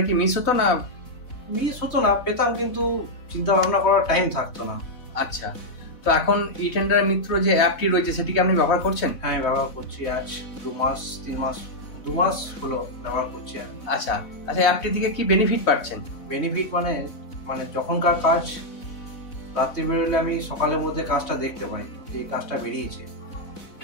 কি মিস হতো না? মিস হতো না, পেতাম, কিন্তু চিন্তা ভাবনা করার টাইম থাকতো না। আচ্ছা, তো এখন ই টেন্ডার মিত্র যে অ্যাপটি রয়েছে সেটি কি আপনি ব্যবহার করছেন? হ্যাঁ, আমি ব্যবহার করছি। আজ 2 মাস হলো ব্যবহার করছি। আচ্ছা, আচ্ছা, অ্যাপটি থেকে কি বেনিফিট পাচ্ছেন? বেনিফিট মানে মানে যখনকার কাজ রাত্রি বেরোলে আমি সকালের মধ্যে কাজটা দেখতে পাই, এই কাজটা বেরিয়েছে।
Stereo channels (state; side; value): late; right; 4.1 ms